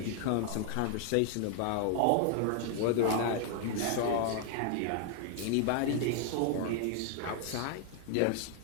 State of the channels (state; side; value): different; both; correlation 0.00